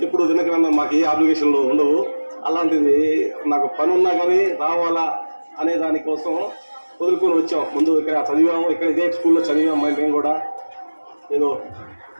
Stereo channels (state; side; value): inverted; both; correlation -1.00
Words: ఇప్పుడు దినకర్ అన్న మాకు ఏ అప్లికేషన్లు ఉండవు, అలాంటిది నాకు పని ఉన్నా కానీ రావాలా అనే దానికోసం వదులుకొని వచ్చాం. ముందు ఇక్కడ చదివాము, ఇక్కడ ఇదే స్కూల్లో చదివాము. మేము కూడా